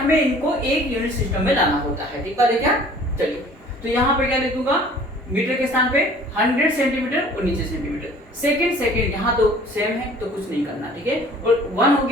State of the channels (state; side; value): normal; both; correlation 0.50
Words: इनको एक यूनिट सिस्टम में लाना होता है, ठीक बात है क्या? चलिए तो यहाँ पे क्या लिख दूंगा, मीटर के स्थान पे 100 सेंटीमीटर और नीचे सेंटीमीटर। सेकंड यहाँ तो सेम है तो कुछ नहीं करना, ठीक है। और 1 हो